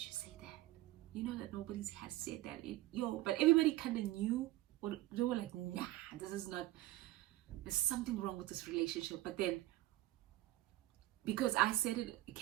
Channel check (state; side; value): quieter; left; 16.9 dB